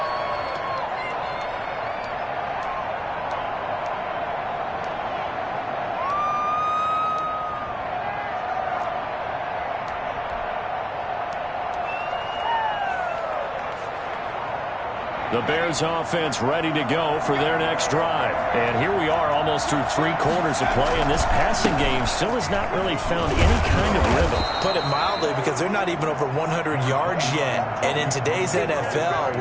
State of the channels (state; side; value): identical; both; correlation 1.00